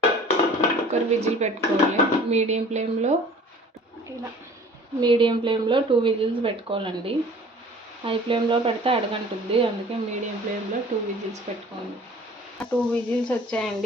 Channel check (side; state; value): both; normal; correlation 0.47